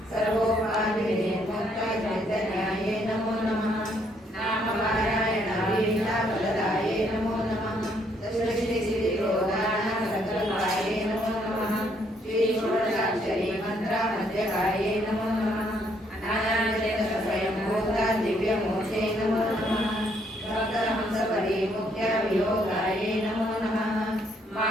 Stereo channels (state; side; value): normal; both; correlation 0.70